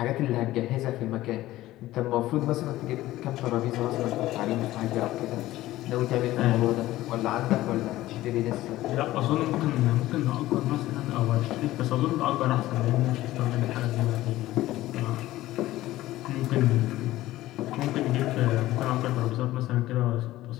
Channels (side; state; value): right; quieter; 16.0 dB